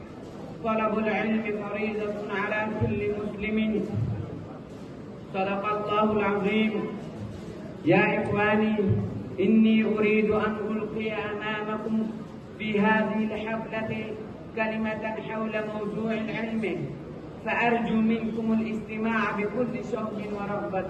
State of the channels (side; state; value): both; identical; correlation 1.00